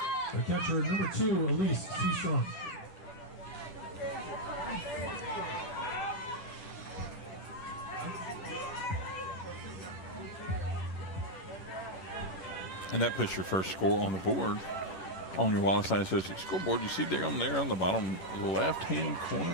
The catcher, number 2, Elise Seastrong. And that puts your first score on the board on your Wallace Eye Associates scoreboard. You see there on the bottom left-hand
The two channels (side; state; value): right; late; 11 ms